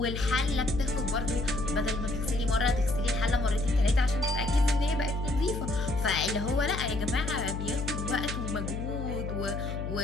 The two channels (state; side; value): noise; left; hum, 4 dB below the sound